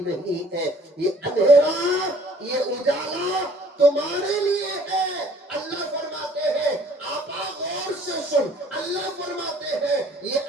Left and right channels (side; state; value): both; normal; correlation 0.56